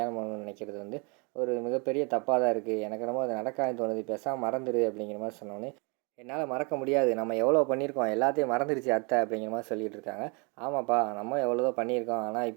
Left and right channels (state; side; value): quieter; left; 32.0 dB